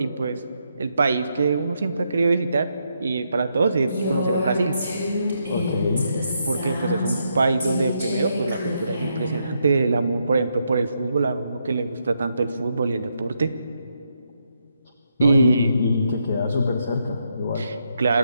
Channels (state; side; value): inverted; both; correlation -0.80